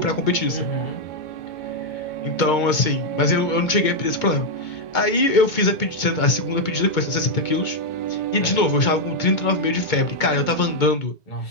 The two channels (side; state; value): right; late; 2.2 ms